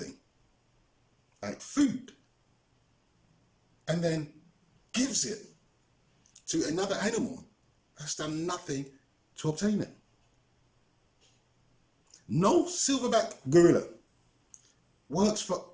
like food and then gives it to another animal that's done nothing to obtain it. No silverback gorilla works for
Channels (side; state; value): both; identical; correlation 1.00